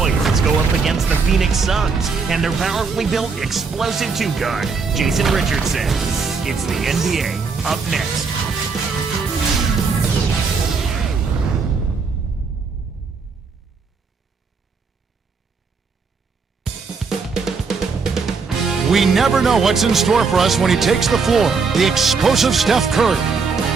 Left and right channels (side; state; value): left; quieter; 5.0 dB